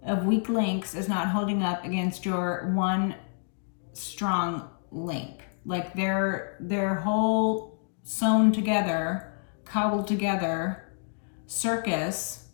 of weak links is not holding up against your one strong link. Like their whole sewn together, cobbled together circus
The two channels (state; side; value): silent; right; 59 dB below the other